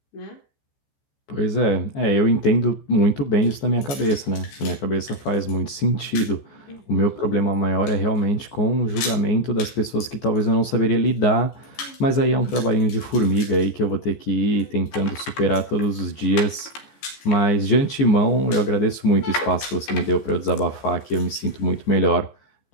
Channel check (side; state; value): right; late; 14 ms